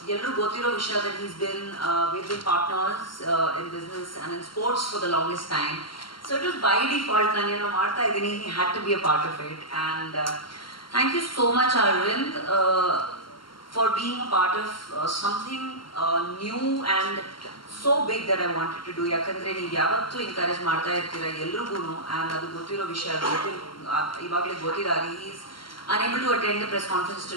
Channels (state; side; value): late; right; 0.73 ms